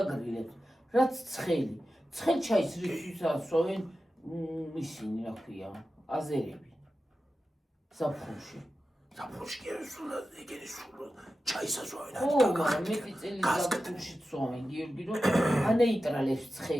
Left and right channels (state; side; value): normal; both; correlation 0.93